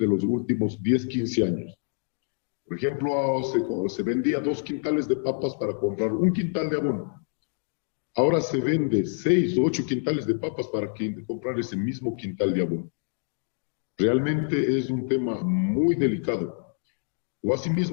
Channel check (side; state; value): right; silent; digital silence